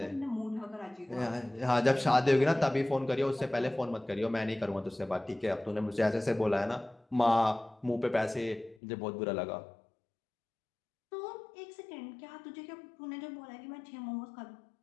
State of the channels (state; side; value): drops out; right; at 8.8 s